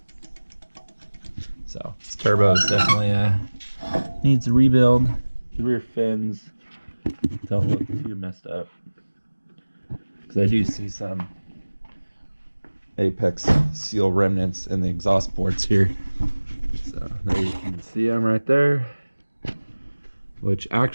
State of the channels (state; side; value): inverted; both; correlation -1.00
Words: So this turbo is definitely needs a rebuild. The rear fins don't look too messed up, because I do see some apex seal remnants in the exhaust ports here. So there you can see them right there, which